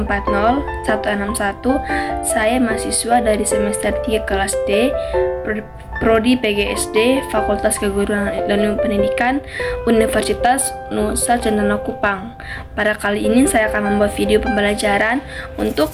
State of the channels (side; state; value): both; identical; correlation 1.00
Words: Saya mahasiswa dari semester 3 kelas D, Prodi PGSD, Fakultas Keguruan dan Ilmu Pendidikan, Universitas Nusa Cendana Kupang. Pada kali ini saya akan membuat video pembelajaran untuk